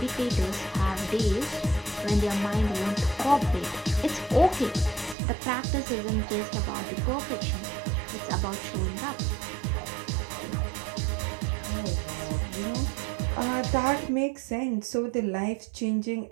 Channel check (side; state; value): left; drops out; at 5.2 s